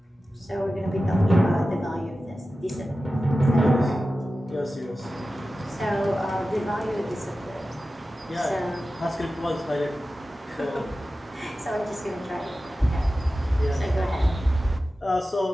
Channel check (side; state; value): both; normal; correlation 0.94